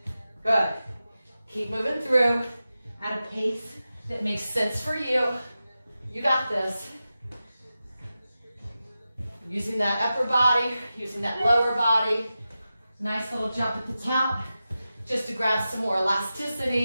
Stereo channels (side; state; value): both; inverted; correlation -0.93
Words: Good. Keep moving through at a pace that makes sense for you. You got this. Using that upper body, using that lower body. Nice little jump at the top, just to grab some more